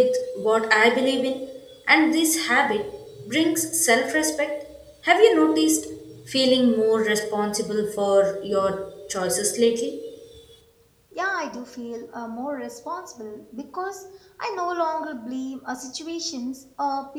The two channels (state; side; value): identical; both; correlation 1.00